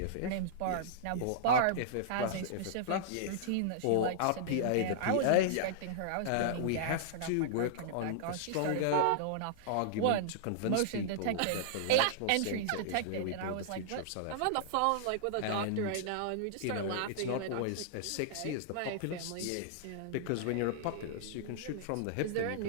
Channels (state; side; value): different; both; correlation -0.01